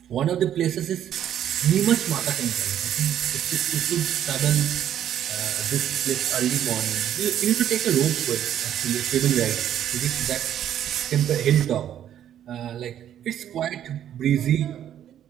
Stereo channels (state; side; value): quieter; left; 10.5 dB